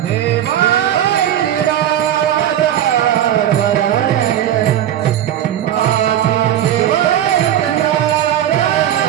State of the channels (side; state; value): left; quieter; 11.2 dB